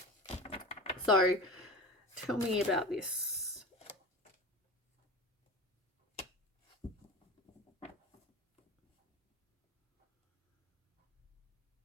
So tell me about this.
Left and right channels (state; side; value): normal; both; correlation 0.31